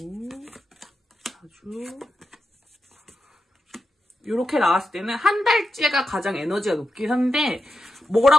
4주 이렇게 나왔을 때는 한 달째가 가장 에너지가 높긴 한데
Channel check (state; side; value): normal; both; correlation 0.89